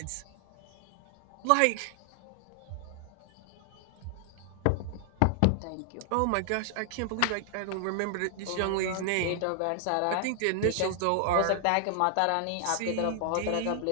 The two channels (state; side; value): different; both; correlation 0.00